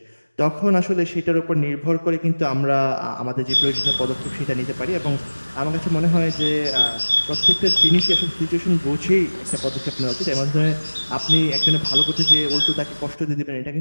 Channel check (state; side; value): inverted; both; correlation -1.00